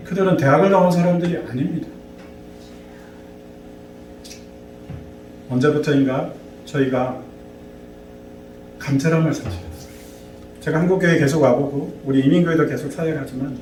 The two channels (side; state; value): both; identical; correlation 1.00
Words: 그들은 대학을 나온 사람들이 아닙니다. 언제부터인가 저희가 감사함을 사실했어요. 제가 한국교회 계속 와보고 우리 이민교회도 계속 사역하지만